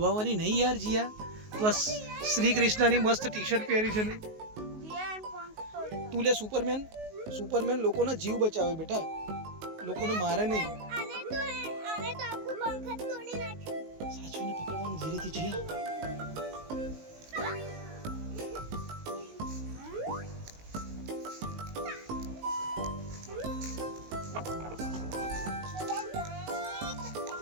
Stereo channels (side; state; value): left; late; 19 ms